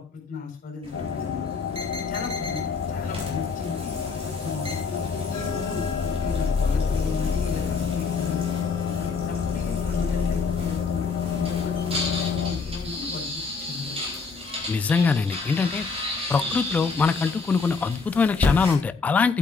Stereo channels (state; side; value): quieter; right; 4.9 dB